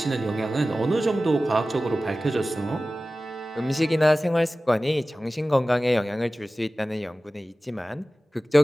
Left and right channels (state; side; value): normal; both; correlation 0.96